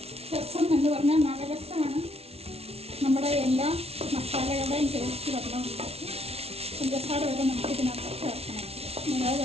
രസം എന്ന് പറഞ്ഞാൽ നല്ല രസമാണ്. നമ്മുടെ എല്ലാ മസാലകളുടെയും ടേസ്റ്റ് വരണമുണ്ടാക്കി പഞ്ചസാര വരെ നമുക്ക് ഇതിനകത്ത് ചേർക്കണം. നല്ല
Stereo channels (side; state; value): left; late; 0.30 ms